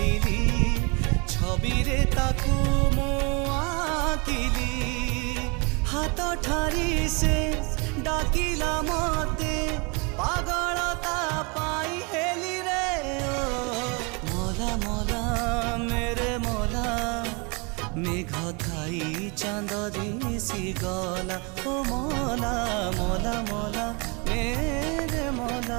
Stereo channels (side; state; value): left; quieter; 31.0 dB